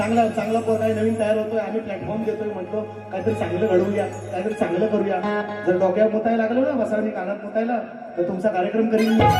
चांगला पोर आहे, नवीन तयार होतोय, आम्ही प्लॅटफॉर्म देतोय. म्हटलं काहीतरी चांगलं घडवूया, काहीतरी चांगलं करूया. जर डोक्यात मुतायला लागलो ना, बसावणी कानात मुतायला, तर तुमचा कार्यक्रम करीन मी.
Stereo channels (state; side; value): identical; both; correlation 1.00